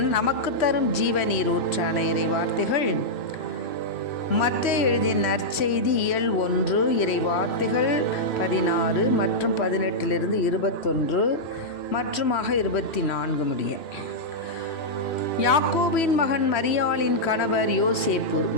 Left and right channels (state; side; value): late; right; 3.1 ms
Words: நமக்கு தரும் ஜீவநீர் ஊற்றான இறை வார்த்தைகள் மத்தேயு எழுதிய நற்செய்தி இயல் 1 இறை வார்த்தைகள் 16 மற்றும் 18 21 மற்றுமாக 24 முடிய. யாக்கோபின் மகன் மரியாளின் கணவர் யோசேப்பு,